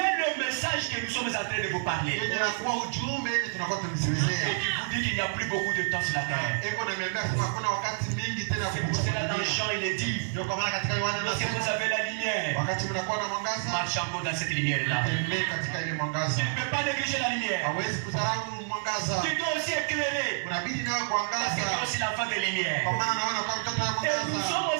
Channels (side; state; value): left; silent; 59 dB below the other